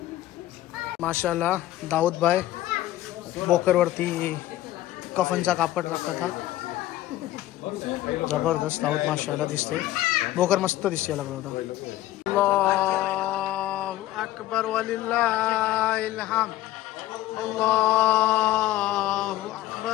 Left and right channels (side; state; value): right; quieter; 15.2 dB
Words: माशाल्लाह दाऊदभाई बोकरवरती कफनचा कापड टाकतात. जबरदस्त दाऊद माशाल्लाह दिसते. बोकर मस्त दिसते लागला होता. अल्लाहु अकबर वलिल्लाहिल हम्द. अल्लाहु